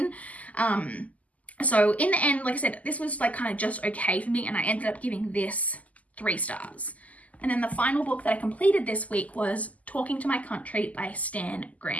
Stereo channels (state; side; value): late; right; 0.074 ms